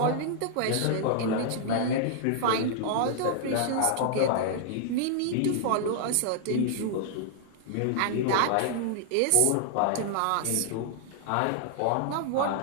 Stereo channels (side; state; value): both; different; correlation -0.01